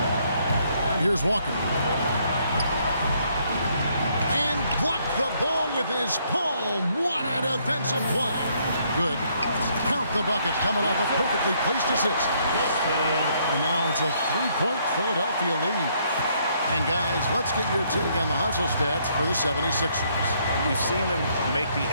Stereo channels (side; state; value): both; inverted; correlation -0.69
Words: And here's Walker. And blocked the ball with his palm. What a defensive play. Good. Count the bucket coming off a perfectly placed assist. And now it's a 3-point Philadelphia lead. And guys, let's get your take on the hustle stats for the 76ers. We've seen them make the